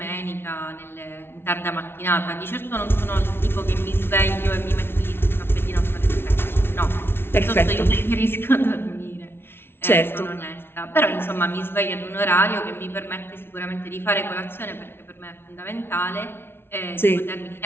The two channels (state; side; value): late; right; 0.11 ms